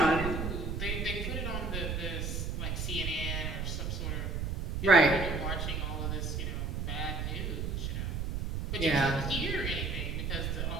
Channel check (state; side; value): noise; right; rumble, 2 dB below the sound